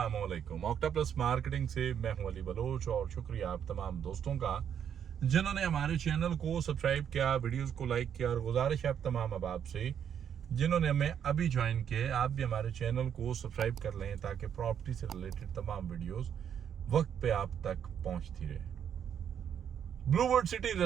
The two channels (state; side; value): quieter; left; 8.6 dB